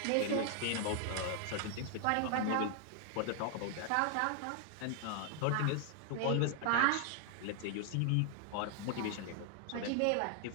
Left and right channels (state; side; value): different; both; correlation 0.00